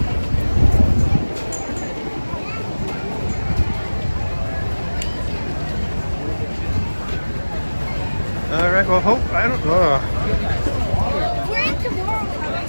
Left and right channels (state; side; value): inverted; both; correlation -1.00